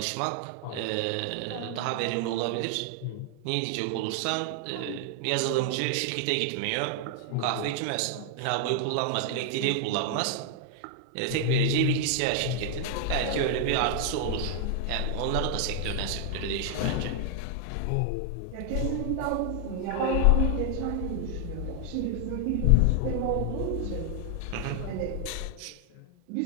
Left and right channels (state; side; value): different; both; correlation 0.00